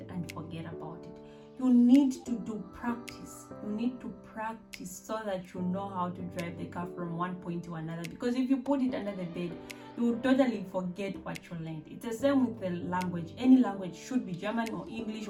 and forget about it. You need to do practice. You need to practice so that you know how to drive the car from one point to another. Because if you put it under the bed, you will totally forget what you learned. It's the same with the language. Any language, should be German or English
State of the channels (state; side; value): identical; both; correlation 1.00